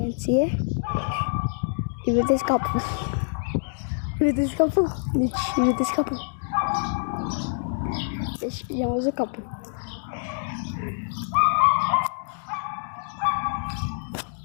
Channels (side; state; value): right; silent; digital silence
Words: îi vedeți capul. Vedeți capul? Deci, vedeți capul. Deci i-am văzut capul.